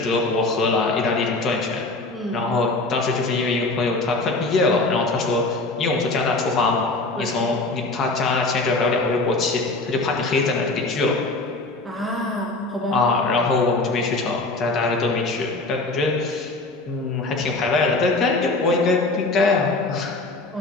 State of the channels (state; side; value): quieter; right; 3.2 dB